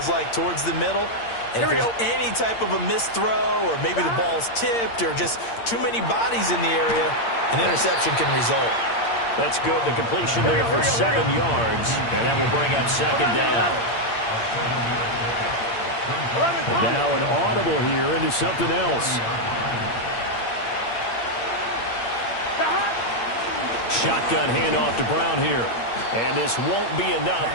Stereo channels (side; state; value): right; late; 8.7 ms